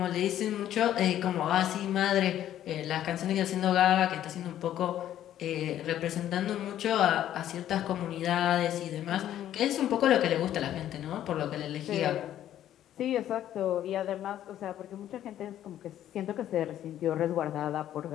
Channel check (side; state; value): right; quieter; 11.7 dB